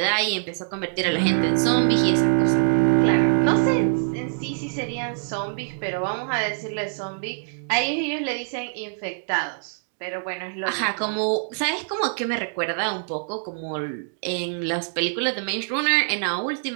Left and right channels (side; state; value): left; silent; digital silence